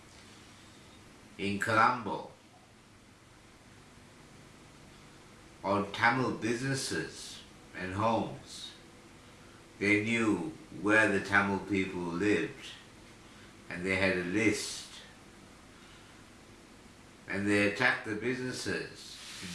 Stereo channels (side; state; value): both; identical; correlation 1.00